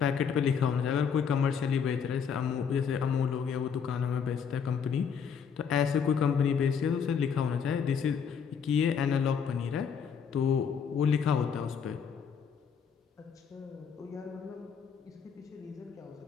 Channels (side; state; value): right; quieter; 6.9 dB